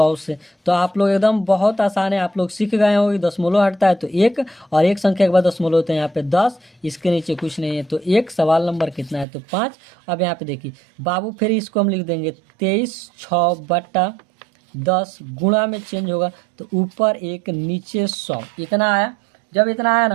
से। तो आप लोग एकदम बहुत आसान है, आप लोग सीख गए हो कि दशमलव हटता है तो 1, और 1 संख्या के बाद दशमलव होता है यहाँ पे 10, इसके नीचे कुछ नहीं है तो 1। सवाल नंबर कितना है, तो 5। अब यहाँ पे देखिए बाबू फिर इसको हम लिख देंगे 23 बटा 10, गुणा में चेंज होगा तो ऊपर 1 नीचे 100, इतना आया। जब इतना आया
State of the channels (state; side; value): drops out; left; at 9.2 s